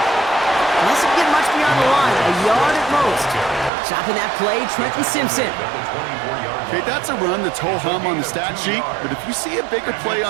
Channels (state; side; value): drops out; left; at 3.7 s